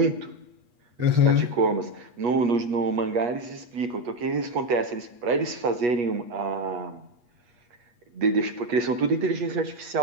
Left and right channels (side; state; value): left; late; 8.3 ms